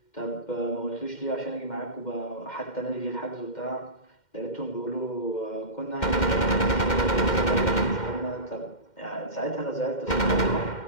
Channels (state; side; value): late; right; 2.1 ms